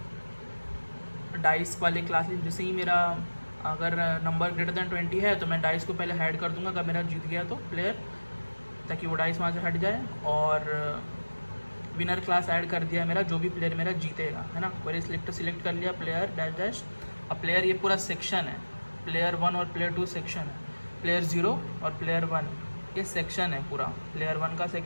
डाइस वाले क्लास लिस्ट। जैसे ही मेरा अगर नंबर ग्रेटर देन 20 है तो मैं डाइस को पहले हाइड कर दूंगा, अगर मेरा जीत गया तो प्लेयर, ताकि वो डाइस वहाँ से हट जाए। और विनर क्लास ऐड कर दिया मेरा, जो भी प्लेयर मेरा जीतेगा, है ना। क्वेरी सिलेक्टर सिलेक्ट कर लिया, प्लेयर डैश डैश। अब प्लेयर ये पूरा सेक्शन है, प्लेयर 1 और प्लेयर 2 सेक्शन है, प्लेयर 0 और प्लेयर 1 ये सेक्शन है पूरा। प्लेयर 1 का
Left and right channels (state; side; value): inverted; both; correlation -1.00